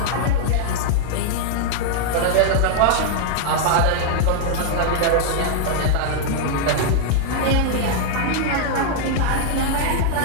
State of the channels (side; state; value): both; different; correlation -0.01